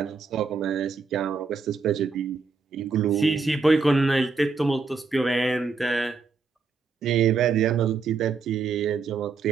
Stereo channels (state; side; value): quieter; left; 4.7 dB